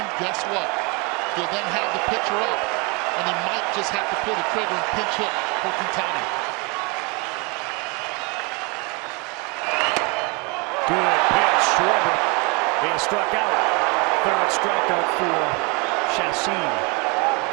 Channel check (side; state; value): left; quieter; 30.2 dB